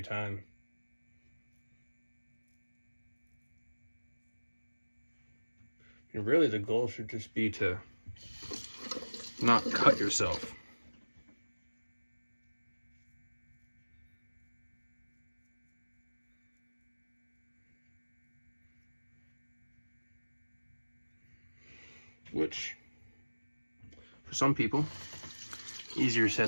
time. And really, the goal should just be to not cut yourself. Which, for some people, easier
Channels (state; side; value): inverted; both; correlation -1.00